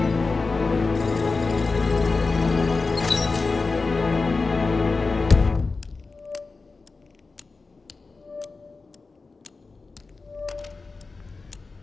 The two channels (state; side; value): quieter; right; 4.0 dB